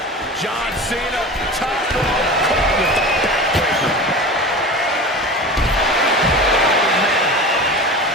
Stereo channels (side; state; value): both; normal; correlation 0.32